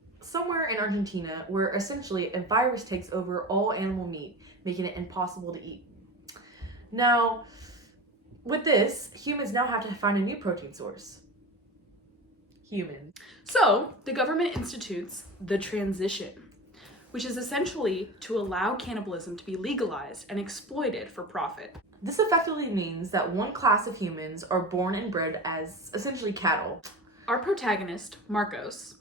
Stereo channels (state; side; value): normal; both; correlation 0.30